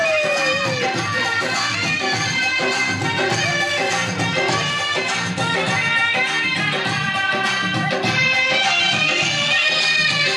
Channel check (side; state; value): both; identical; correlation 1.00